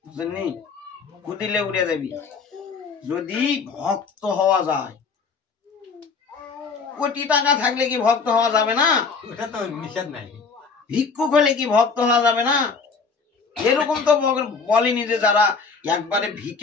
বুঝলি? ফু দিলে উড়ে যাবি। যদি ভক্ত হওয়া যায়, কোটি টাকা থাকলে কি ভক্ত হওয়া যাবে না? ওটা তো নিষেধ নাই। ভিক্ষুক হলে কি ভক্ত হওয়া যাবে না? এরকম তো বলেনি যে যারা একবারে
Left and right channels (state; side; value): quieter; right; 4.9 dB